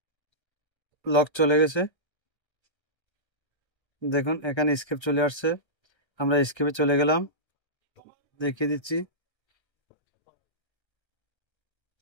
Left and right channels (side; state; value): right; late; 1.5 ms